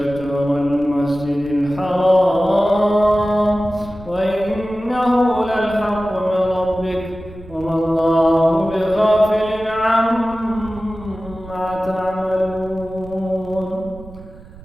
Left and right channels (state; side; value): noise; right; rumble, 19 dB below the sound